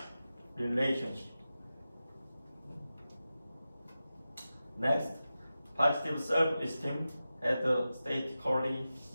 relationship. Next, positive self-esteem has a statistically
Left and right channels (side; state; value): both; inverted; correlation -0.93